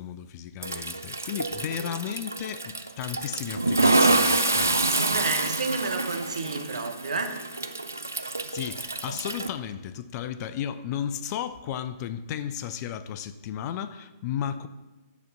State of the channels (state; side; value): inverted; both; correlation -0.56